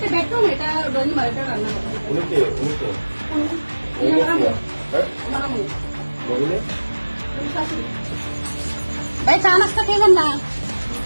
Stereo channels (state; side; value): inverted; both; correlation -1.00